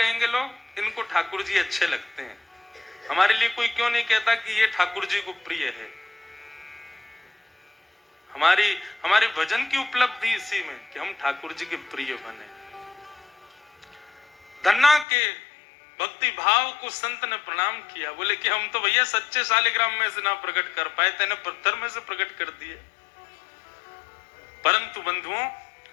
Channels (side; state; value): right; drops out; at 15.1 s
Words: लोग? इनको ठाकुर जी अच्छे लगते हैं। हमारे लिए कोई क्यों नहीं कहता कि ये ठाकुर जी को प्रिय है? हमारे भजन की उपलब्धि इसी में कि हम ठाकुर जी के प्रिय बने। धन्ना के भक्ति भाव को संत ने प्रणाम किया, बोले कि हम तो भैया सच्चे शालिग्राम में से ना प्रकट कर पाए, तेने पत्थर में से प्रकट कर दिए। परंतु बंधुओं,